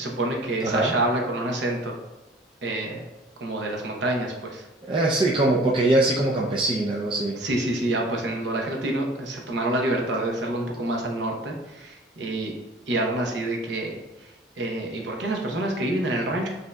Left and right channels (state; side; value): normal; both; correlation 0.48